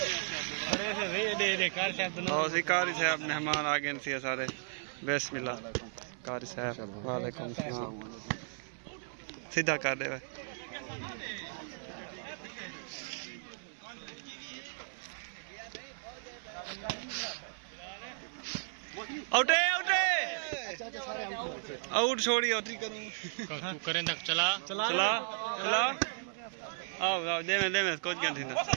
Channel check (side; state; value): left; silent; 54 dB below the other